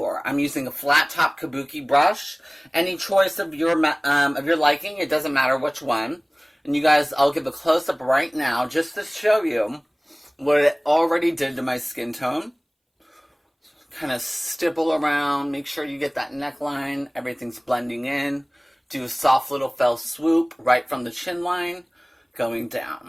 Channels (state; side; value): identical; both; correlation 1.00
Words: I'm using a flat top kabuki brush. Any choice of your liking, it doesn't matter which one. And you guys, I'll give a close-up right now just to show you what it already did to my skin tone. Kind of stipple around, make sure you get that neckline, everything's blending in. Do a soft little fell swoop right from the chin line, going